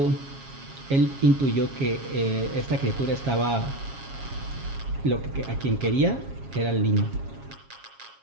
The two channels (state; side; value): late; left; 7.3 ms